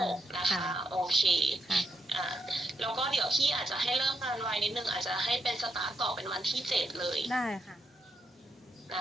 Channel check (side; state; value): both; normal; correlation 0.81